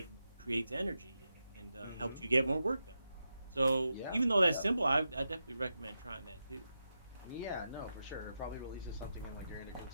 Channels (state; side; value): inverted; both; correlation -0.89